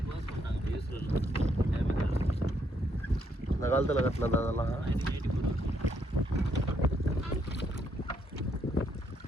இந்த காலத்தில் கட்டினது அதெல்லாம்.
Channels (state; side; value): normal; both; correlation 0.74